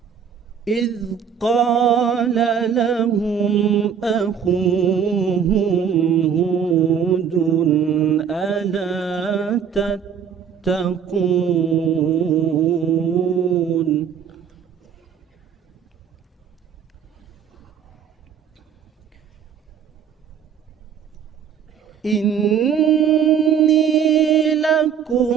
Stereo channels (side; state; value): left; quieter; 7.7 dB